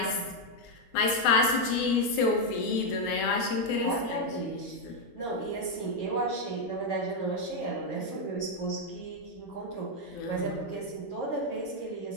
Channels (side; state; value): right; late; 8.3 ms